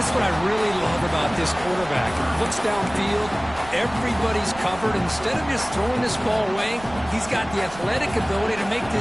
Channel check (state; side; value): noise; right; rumble, 17 dB below the sound